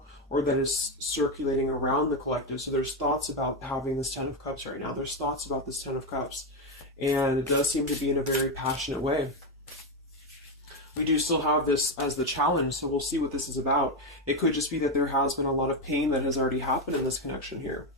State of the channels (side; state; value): both; normal; correlation 0.09